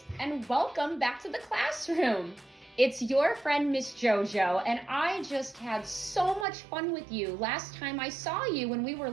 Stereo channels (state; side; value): drops out; left; at 6.5 s